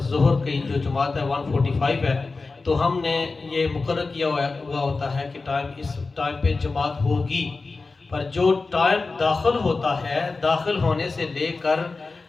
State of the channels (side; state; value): right; quieter; 3.9 dB